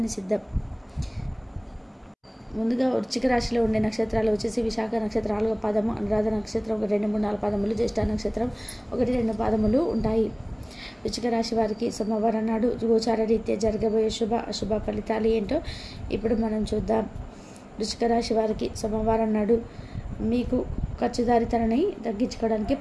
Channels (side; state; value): both; identical; correlation 1.00